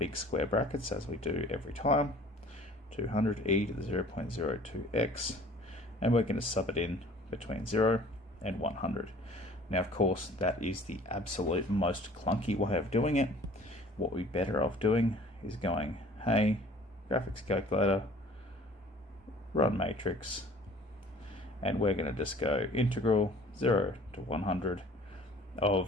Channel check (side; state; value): both; normal; correlation 0.50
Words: square brackets as we do every time, 200 e to the 0.02x, and we're going to sub it in between 0 and 100. Now of course that is the absolute most clunky way of doing it. What we're better off doing is going, hey, graphics calculator, run matrix, and we're going to just go integral 0 to 100